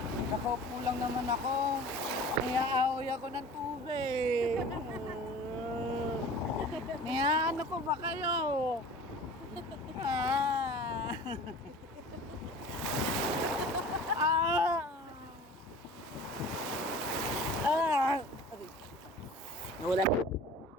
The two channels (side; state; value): both; normal; correlation 0.41